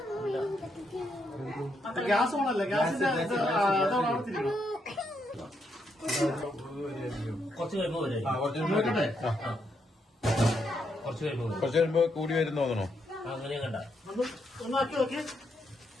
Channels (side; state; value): both; normal; correlation 0.78